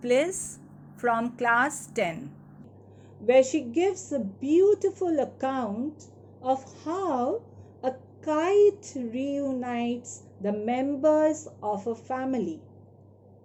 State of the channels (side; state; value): both; identical; correlation 1.00